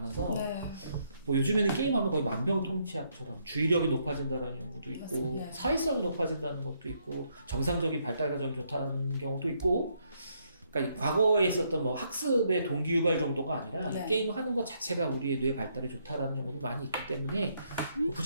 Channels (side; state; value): both; inverted; correlation -0.74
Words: 네. 뭐 요즘에는 게임하면 거의 만병통치약처럼 주의력이 높아진다는 연구도 있고 맞습니다. 사회성이 높아진다는 것도 있고 정상적인 발달 과정이 좋다는 경우도 있고 그러니까 과거에 있었던 뭐 학습의 동기유발 정도가 아니라 네. 이 게임을 하는 것 자체가 우리의 뇌 발달에 좋다라는 연구도 많이 있기 때문에